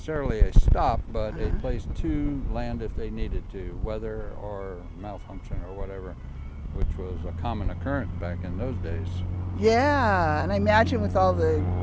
a stop, but a place to land if they needed to, weather or malfunction or whatever, which was a common occurrence back in those days. Yeah, and I imagine with all the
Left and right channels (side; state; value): both; identical; correlation 1.00